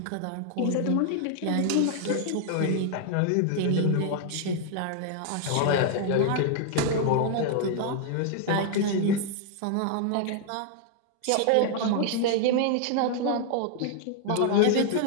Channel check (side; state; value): both; different; correlation 0.00